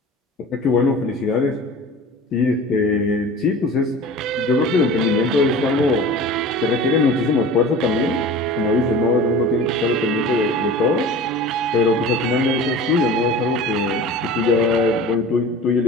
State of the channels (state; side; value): normal; both; correlation 0.38